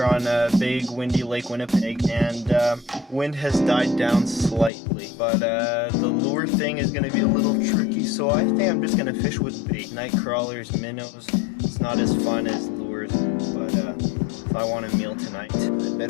here on a big windy Lake Winnipeg, and wind has died down slightly, but the lure thing is going to be a little tricky, so I think I'm just going to fish with bait. Night crawlers, minnows, it's not as fun as lures, but if I want a meal tonight, I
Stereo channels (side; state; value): right; drops out; at 4.7 s